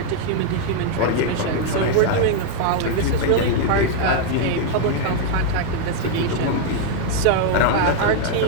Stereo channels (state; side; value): different; both; correlation 0.00